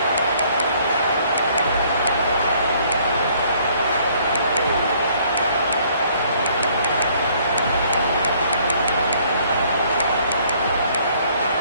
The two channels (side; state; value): both; inverted; correlation -0.62